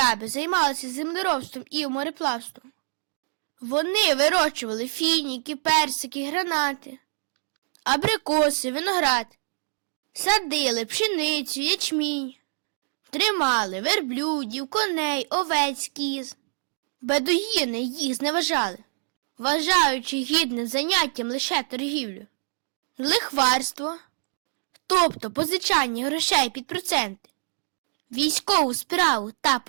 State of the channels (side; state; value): left; silent; 61 dB below the other